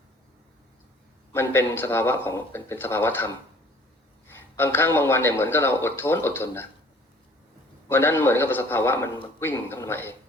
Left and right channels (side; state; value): both; normal; correlation 0.53